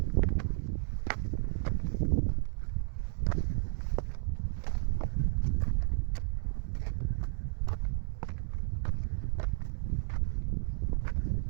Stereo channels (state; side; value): silent; left; digital silence